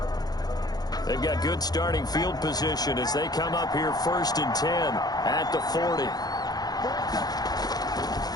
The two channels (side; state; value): right; late; 0.19 ms